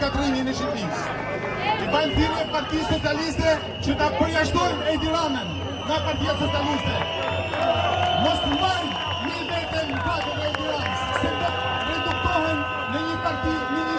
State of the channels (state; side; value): identical; both; correlation 1.00